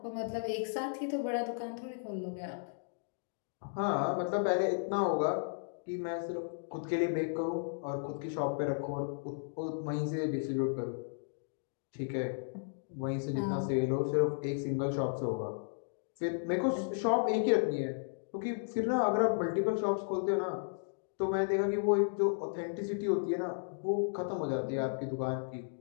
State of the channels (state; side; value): silent; right; digital silence